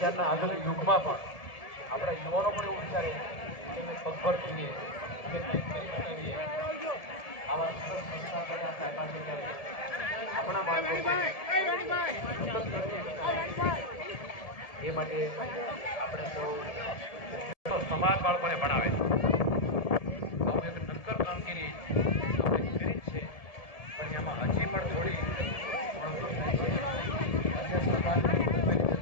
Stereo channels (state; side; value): late; right; 1.7 ms